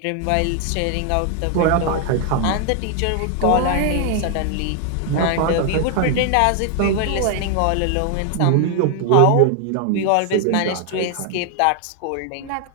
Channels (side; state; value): both; different; correlation 0.00